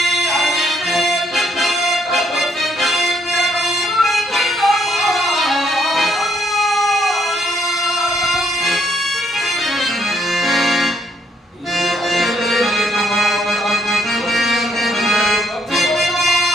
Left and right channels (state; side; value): normal; both; correlation 0.71